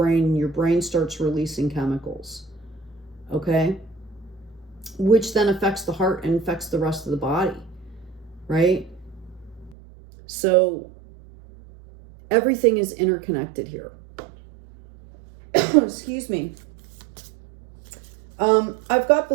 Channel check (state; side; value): drops out; left; at 9.8 s